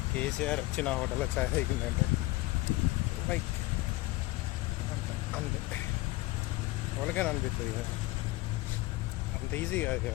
కేసీఆర్ వచ్చిన హోటల్లో చాయ్ తాగిందంటే లైక్ అంతే, ఎవరికైనా అనిపిస్తుంది కదా. అంత ఈజీ కాదు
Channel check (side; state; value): right; quieter; 19.6 dB